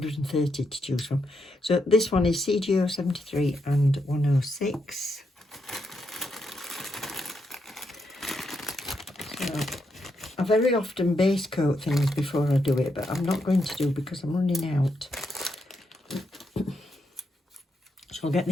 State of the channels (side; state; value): both; normal; correlation 0.81